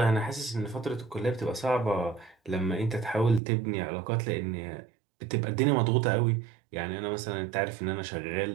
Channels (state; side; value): drops out; left; at 3.4 s